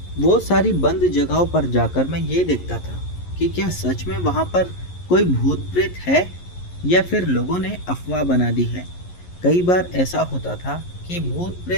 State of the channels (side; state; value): right; late; 11 ms